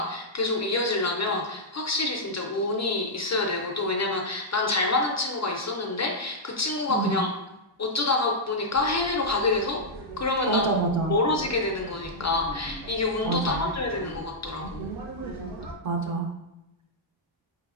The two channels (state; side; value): normal; both; correlation -0.08